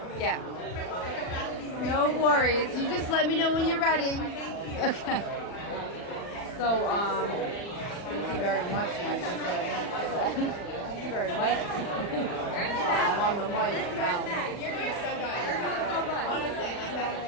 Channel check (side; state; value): right; late; 40 ms